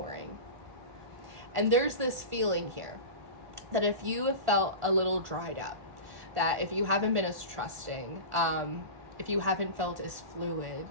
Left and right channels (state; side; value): late; left; 1.5 ms